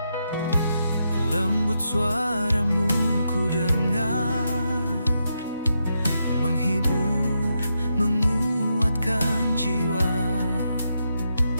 Lembut suara-Mu ku dengar, menghibur, menguatkan jiwa.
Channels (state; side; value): inverted; both; correlation -0.83